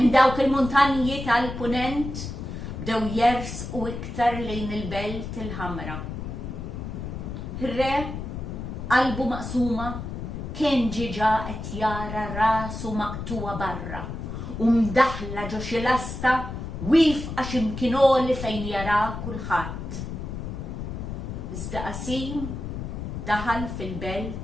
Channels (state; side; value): noise; left; rumble, 7 dB below the sound